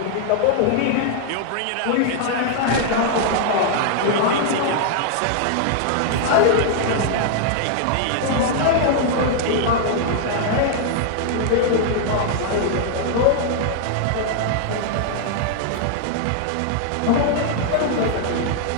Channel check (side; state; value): both; different; correlation -0.01